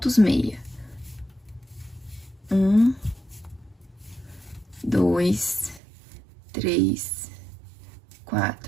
meia. 1, 2, 3,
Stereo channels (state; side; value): drops out; left; at 5.8 s